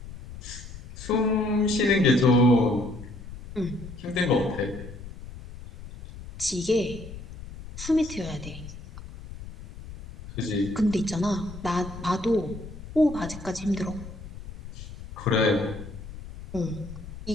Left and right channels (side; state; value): left; noise; rumble, 13 dB below the sound